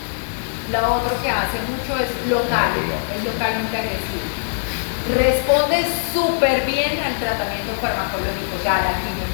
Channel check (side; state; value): right; silent; digital silence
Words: Lo otro que hace mucho es local, es localmente agresivo. Responde súper bien al tratamiento farmacológico, o sea, a la